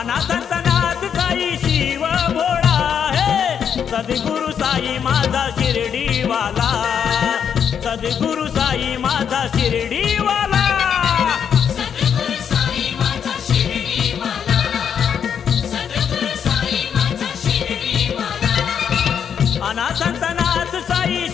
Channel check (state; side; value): quieter; right; 7.9 dB